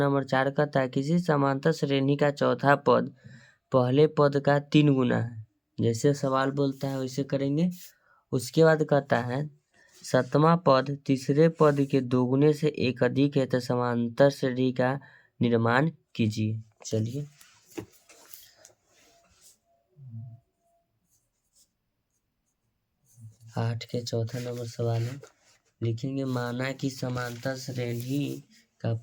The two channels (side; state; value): both; identical; correlation 1.00